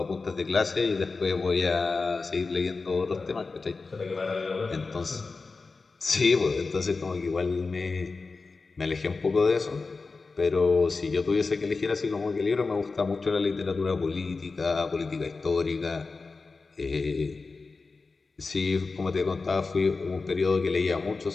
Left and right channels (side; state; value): right; quieter; 4.1 dB